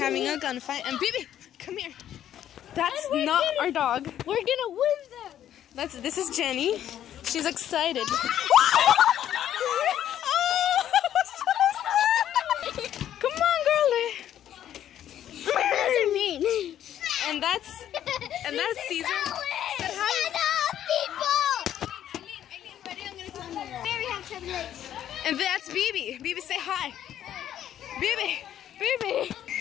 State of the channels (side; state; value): right; quieter; 11.0 dB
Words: a gunfight. And baby, come here. That's not our dog. We're gonna win them. This is Jenny. She's excited. Come on, girlie. What does it mean? And that's Caesar. Said hi. And that's Bibi. Bibi, say hi. Bibi. Bibi.